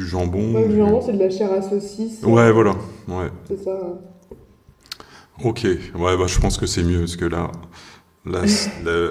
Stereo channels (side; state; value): both; identical; correlation 1.00